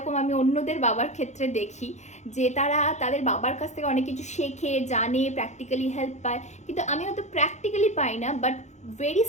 আমি অন্যদের বাবার ক্ষেত্রে দেখি যে তারা তাদের বাবার কাছ থেকে অনেক কিছু শেখে, জানে, প্র্যাকটিক্যালি হেল্প পায়, কিন্তু আমি হয়তো প্র্যাকটিক্যালি পাই না, বাট ভেরি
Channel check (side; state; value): right; late; 0.33 ms